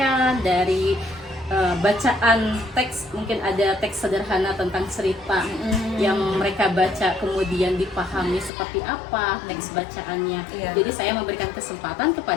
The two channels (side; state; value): right; drops out; at 8.5 s